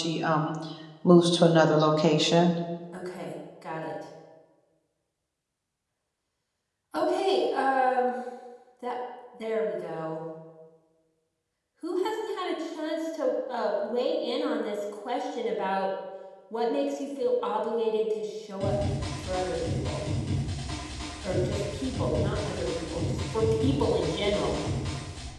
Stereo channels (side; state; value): both; identical; correlation 1.00